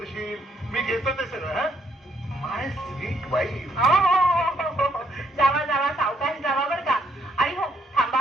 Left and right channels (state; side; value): normal; both; correlation 0.71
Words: मी घेतो ते सगळं. हा, माय स्वीट वाईफ. हो हो हो हो हो, जावा जावा, सावकाश जावा बरं का. आणि हो